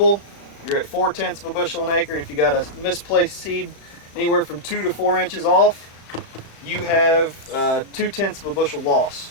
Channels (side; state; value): right; late; 35 ms